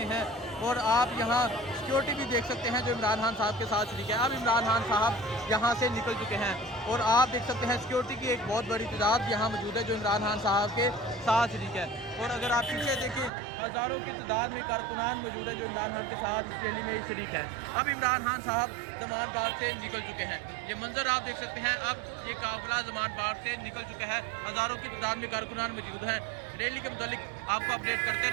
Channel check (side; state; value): left; drops out; at 13.3 s